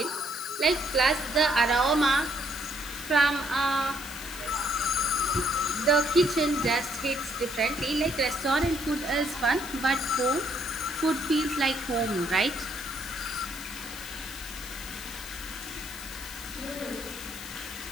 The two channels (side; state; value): left; noise; hiss, 13 dB below the sound